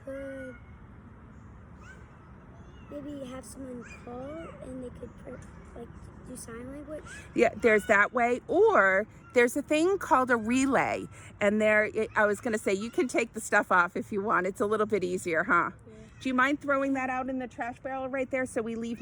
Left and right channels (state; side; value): identical; both; correlation 1.00